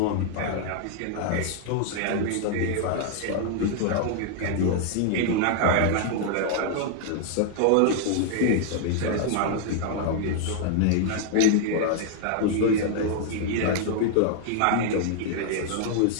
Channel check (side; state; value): both; different; correlation 0.00